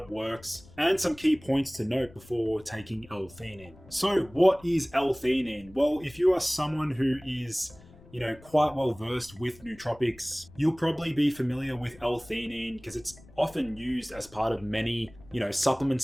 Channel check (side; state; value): left; noise; rumble, 23 dB below the sound